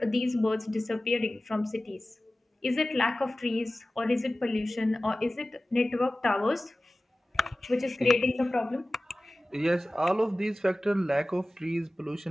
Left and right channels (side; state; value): both; normal; correlation 0.97